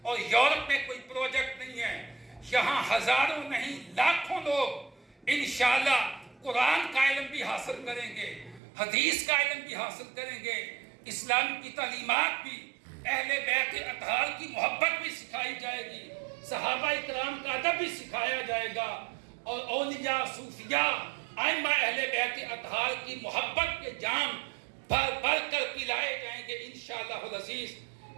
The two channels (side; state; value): left; drops out; at 8.6 s